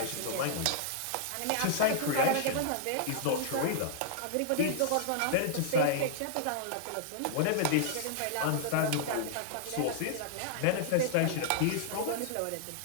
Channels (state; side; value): different; both; correlation -0.01